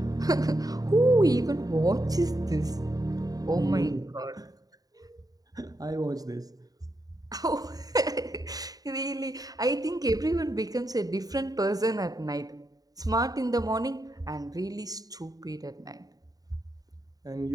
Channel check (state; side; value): late; left; 0.18 ms